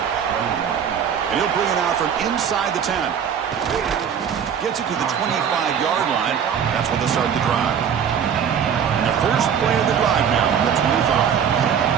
And he'll bring it out from inside the 10. Gets it to the 25-yard line. That's where they'll start the drive. And the first play of the drive now on the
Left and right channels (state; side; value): quieter; left; 7.9 dB